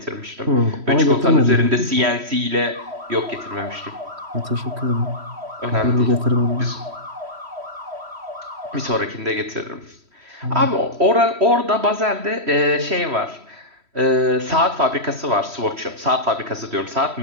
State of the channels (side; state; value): left; late; 3.1 ms